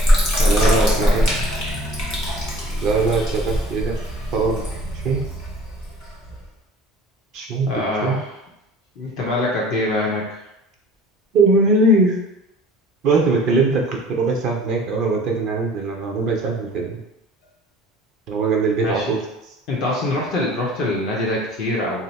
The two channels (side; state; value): both; normal; correlation 0.47